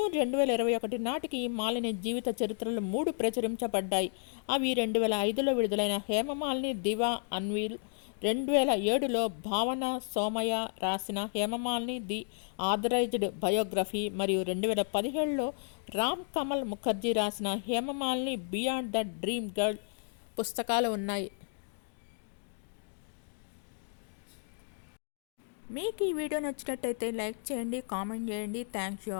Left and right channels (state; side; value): silent; right; 56 dB below the other